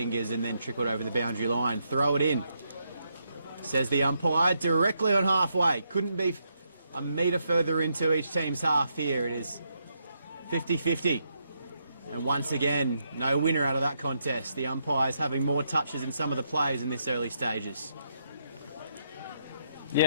and then trickled over the boundary line. Throw it in, says the umpire, directly on halfway. Couldn't be a metre further into each team's half here. It is 50-50. And once again, no winner out of that contest. The umpires having more touches than some of the players in this early stages.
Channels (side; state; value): both; inverted; correlation -0.79